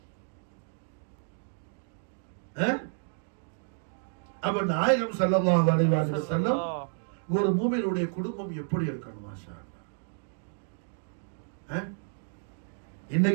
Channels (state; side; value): silent; left; digital silence